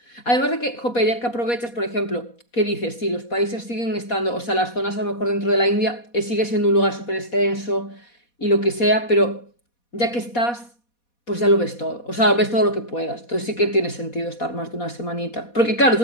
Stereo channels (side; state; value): right; late; 4.2 ms